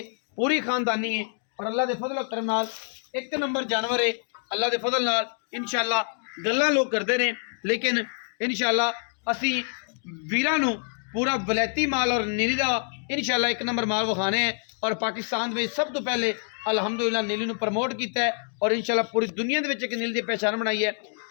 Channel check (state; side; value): silent; right; 57 dB below the other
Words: पूरी खानदानी है और अल्लाह के फजल करम नाल एक नंबर जानवर है। अल्लाह के फजल नाल इंशाअल्लाह गल्लां लोग करते हैं, लेकिन इंशाअल्लाह असी वीरां नूं पूरा विलायती माल और नीली का इंशाअल्लाह एक नंबर माल विखाने हैं। और पाकिस्तान में सब तो पहले अलहमदुलिल्लाह नीली नूं प्रमोट किया है और इंशाअल्लाह पूरी दुनिया के एक नीली की पहचान बनाई है।